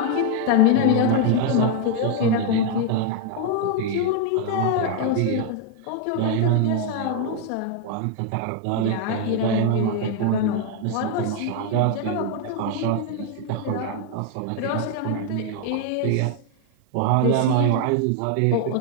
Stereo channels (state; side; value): different; both; correlation 0.01